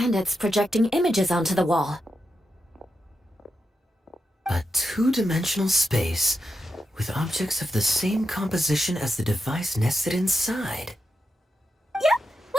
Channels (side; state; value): both; normal; correlation 0.87